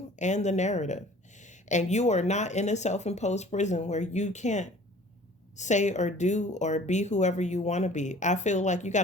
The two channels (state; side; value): normal; both; correlation 0.49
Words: and the narrative. And you are not in a self-imposed prison where you can't say or do or be whoever you want to be. I feel like you